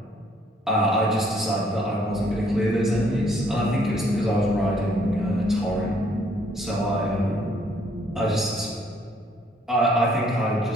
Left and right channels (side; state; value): both; normal; correlation 0.65